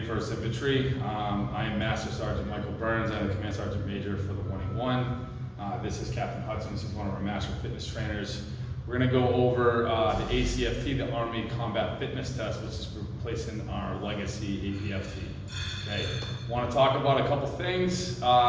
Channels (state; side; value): identical; both; correlation 1.00